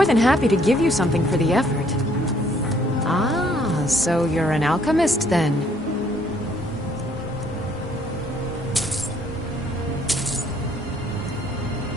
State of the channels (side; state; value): both; normal; correlation 0.64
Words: than happy to give you something for the effort. Ah, so you're an alchemist then?